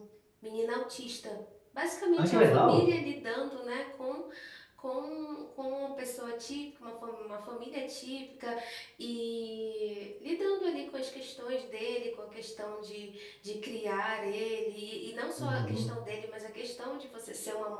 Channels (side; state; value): both; identical; correlation 1.00